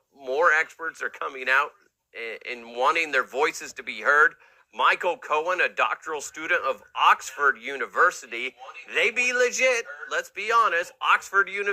more experts are coming out and wanting their voices to be heard. Michael Cohen, a doctoral student of Oxford University. They be legit. Let's be honest. Oxford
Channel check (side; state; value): both; identical; correlation 1.00